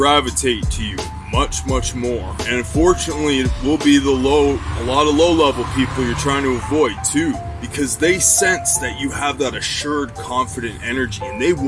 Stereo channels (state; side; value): identical; both; correlation 1.00